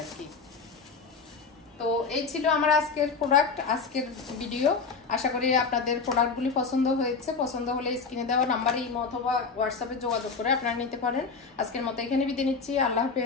আর কি। তো এই ছিল আমার আজকের প্রোডাক্ট, আজকের ভিডিও। আশা করি আপনাদের প্রোডাক্টগুলি পছন্দ হয়েছে। পছন্দ হলে স্ক্রিনে দেওয়া নাম্বারে ইমো অথবা হোয়াটসঅ্যাপে যোগাযোগ করে আপনারা নিতে পারেন। আজকের মতো এখানে বিদায় নিচ্ছি। আল্লাহ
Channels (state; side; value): quieter; right; 5.0 dB